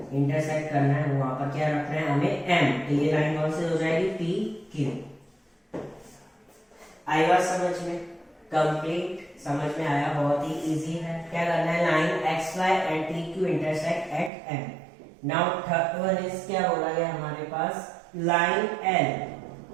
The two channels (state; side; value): drops out; left; at 14.3 s